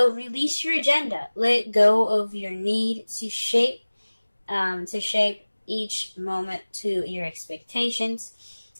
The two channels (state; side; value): inverted; both; correlation -1.00